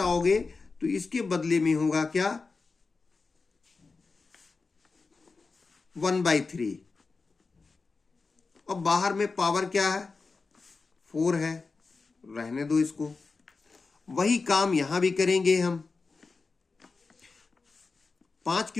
तो इसके बदले में होगा क्या? 1/3। अब बाहर में पावर क्या है? 4 है, रहने दो इसको। वही काम यहां भी करेंगे हम। 5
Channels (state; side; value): quieter; right; 4.2 dB